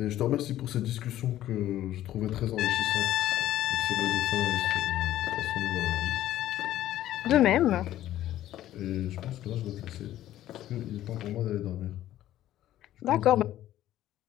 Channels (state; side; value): quieter; right; 13.3 dB